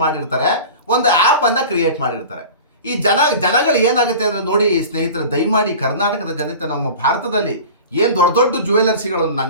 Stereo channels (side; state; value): both; inverted; correlation -0.36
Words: ಮಾಡಿರ್ತಾರೆ, ಒಂದು ಆ್ಯಪನ್ನು ಕ್ರಿಯೇಟ್ ಮಾಡಿರ್ತಾರೆ. ಈ ಜನಗಳು ಏನಾಗುತ್ತೆ ಅಂದರೆ ನೋಡಿ ಸ್ನೇಹಿತರೆ, ದಯಮಾಡಿ ಕರ್ನಾಟಕದ ಜನತೆ, ನಮ್ಮ ಭಾರತದಲ್ಲಿ ಏನು ದೊಡ್ಡ ದೊಡ್ಡ ಜ್ಯುವೆಲರ್ಸಿಗಳು,